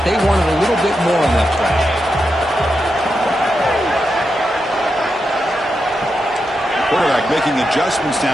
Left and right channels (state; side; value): normal; both; correlation 0.86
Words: they wanted a little bit more on that play. Quarterback making adjustments now